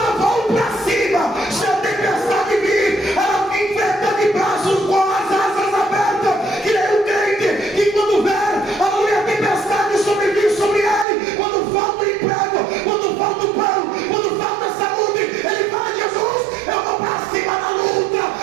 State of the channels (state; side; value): drops out; left; at 11.1 s